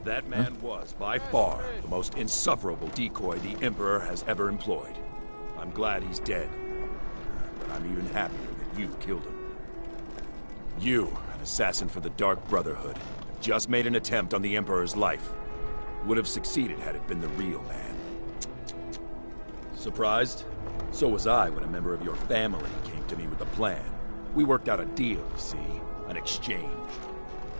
That man was, by far, the most insufferable decoy the Emperor has ever employed. I'm glad he's dead. But I'm even happier that you killed him. You, an assassin for the Dark Brotherhood, just made an attempt on the Emperor's life. Would have succeeded had it been the real man. Surprised? So was I when a member of your family came to me with a plan. We worked out a deal, you see, an exchange.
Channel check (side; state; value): both; inverted; correlation -1.00